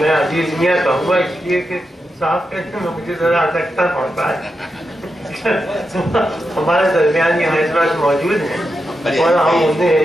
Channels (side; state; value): both; normal; correlation 0.87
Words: عزیز میاں کہوں گا اس لیے کہ صاحب کہتے ہیں مجھے ذرا سکتا پڑتا ہے، ہمارے درمیان یہاں اس وقت موجود ہیں اور ہم